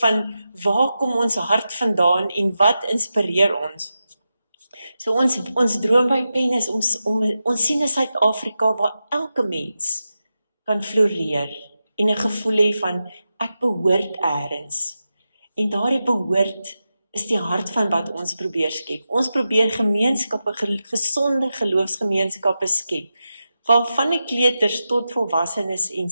waar kom ons hart vandaan en wat inspireer ons. So ons droom by Pen is ons sien 'n Suid-Afrika waar elke mens kan floreer en 'n gevoel hê van ek behoort eers. En daardie behoort is die hart van wat ons probeer skep. Ons probeer gemeenskappe, gesonde geloofsgemeenskappe skep, waarvan die kleuters tot volwassenes en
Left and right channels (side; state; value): both; inverted; correlation -0.90